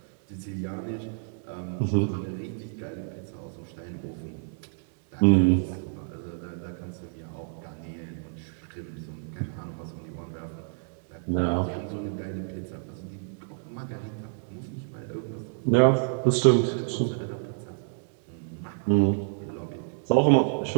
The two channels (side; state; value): left; silent; digital silence